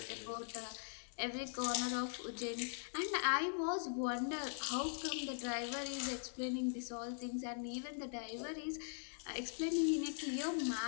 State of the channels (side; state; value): right; silent; digital silence